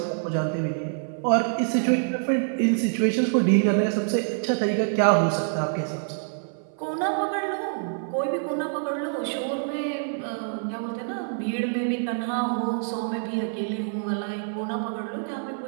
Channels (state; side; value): silent; left; 57 dB below the other